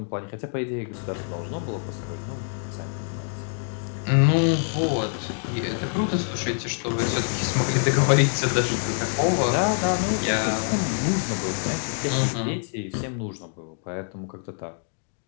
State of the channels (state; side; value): silent; right; 61 dB below the other